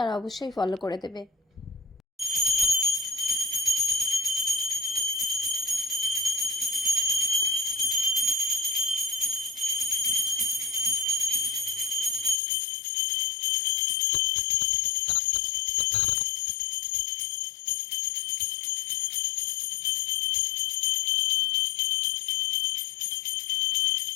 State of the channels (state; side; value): drops out; right; at 12.4 s